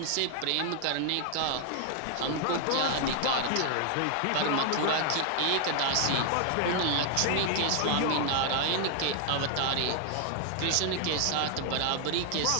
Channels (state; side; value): different; both; correlation 0.00